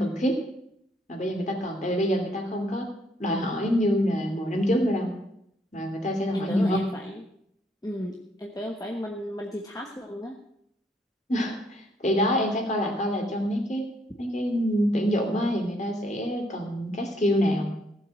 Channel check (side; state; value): both; normal; correlation 0.70